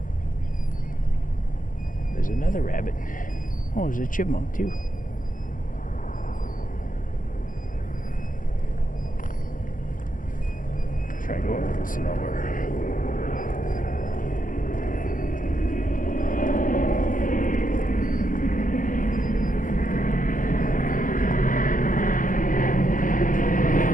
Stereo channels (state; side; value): late; right; 0.38 ms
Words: There's another rabbit. Oh, there's a chipmunk too. Try to go a little slower.